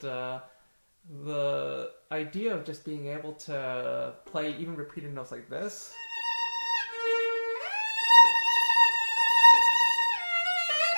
the idea of just being able to play even repeated notes like this,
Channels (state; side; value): inverted; both; correlation -1.00